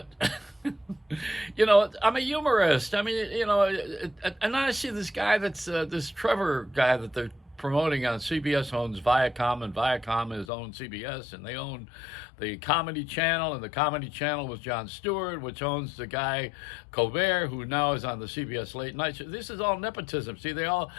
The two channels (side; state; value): right; drops out; at 10.5 s